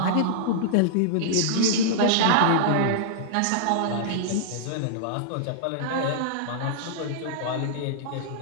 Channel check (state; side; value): different; both; correlation -0.02